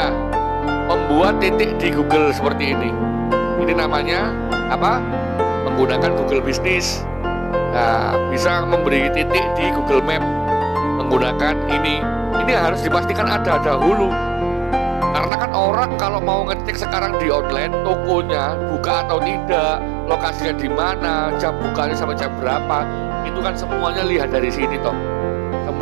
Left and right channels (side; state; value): left; drops out; at 15.3 s